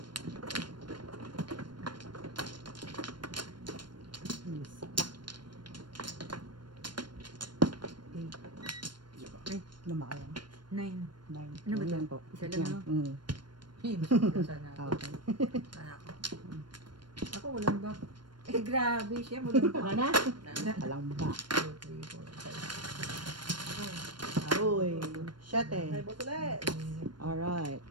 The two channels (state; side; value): late; left; 0.72 ms